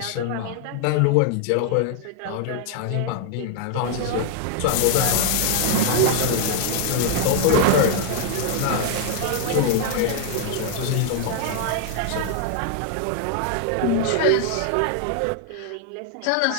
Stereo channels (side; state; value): both; different; correlation 0.00